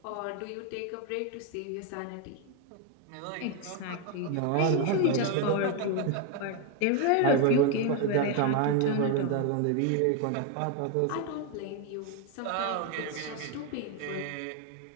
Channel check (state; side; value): different; both; correlation 0.01